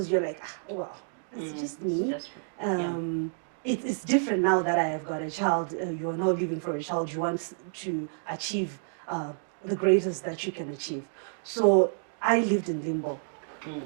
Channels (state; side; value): silent; left; digital silence